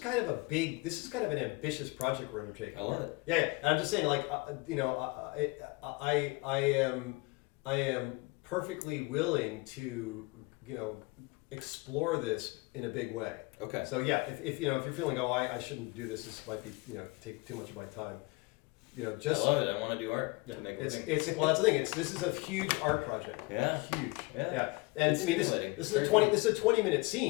of an ambitious project we're undertaking. I love it. Yeah. And I'm just saying, like, I am perfectly willing to, explore this in a big way. Okay. So yeah, if you're feeling, I shouldn't do this. This might be, take too much of my time. Just I love it. I want to do art yeah, to make a it's living. well, that's the thing. This is a huge art project. Yeah. Huge. Yeah. And It's I mean, this stimulating. is Very a 20 cool. this is a 20-minute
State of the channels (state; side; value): quieter; right; 25.1 dB